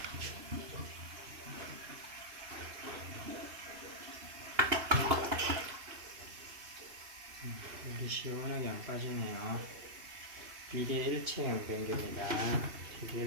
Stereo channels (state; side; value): late; left; 2.8 ms